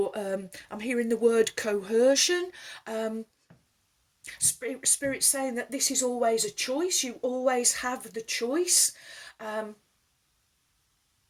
I'm hearing the word coercion. Spirit saying that this is always a choice. You always have the choice.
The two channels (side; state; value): both; identical; correlation 1.00